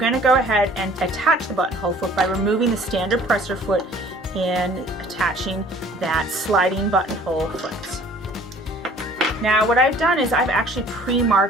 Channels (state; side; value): normal; both; correlation 0.52